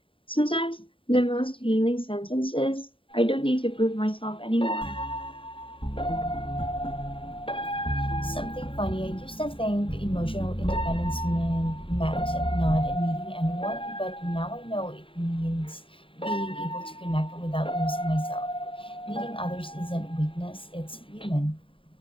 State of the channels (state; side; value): late; right; 0.25 ms